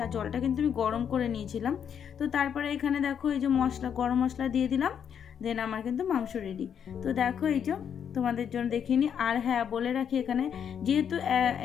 আর জলটা কিন্তু আমি গরম করে নিয়েছিলাম। তো তারপরে এখানে দেখো এই যে গরম মশলা দিয়ে দিলাম, দেন আমার কিন্তু মাংস রেডি। তো দেখো এই যে তোমাদের জন্য দেখিয়ে নিই। আর হ্যাঁ, বলে রাখি, এখানে যেহেতু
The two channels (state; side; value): quieter; right; 8.1 dB